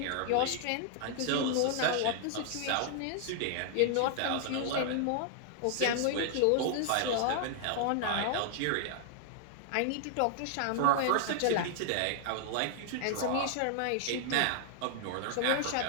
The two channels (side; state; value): both; different; correlation -0.01